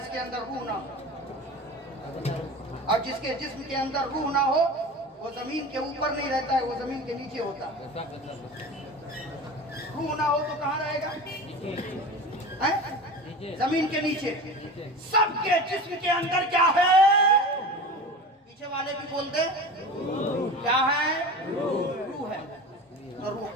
अंदर रूह ना हो, और जिसके जिस्म के अंदर रूह ना हो वो जमीन के ऊपर नहीं रहता है, वो जमीन के नीचे होता है। रूह ना हो तो कहाँ रहेगा? जमीन के नीचे। सबके जिस्म के अंदर क्या है? पीछे वाले भी बोल दे, क्या है? रूह है। तो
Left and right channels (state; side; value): normal; both; correlation 0.32